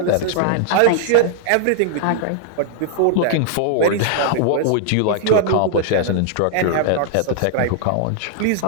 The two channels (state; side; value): different; both; correlation -0.01